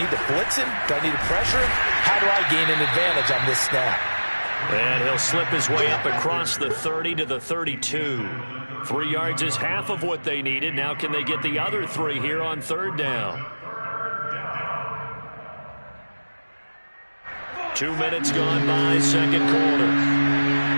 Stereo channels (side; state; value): both; inverted; correlation -1.00